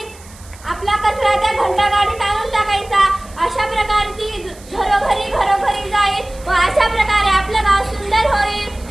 आपला कचरा त्या घंटा गाडीत आणून टाकायचा. अशा प्रकारे ती घरोघरी जाईल व अशा प्रकारे आपलं गाव सुंदर होईल.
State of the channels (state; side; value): noise; right; hiss, 22 dB below the sound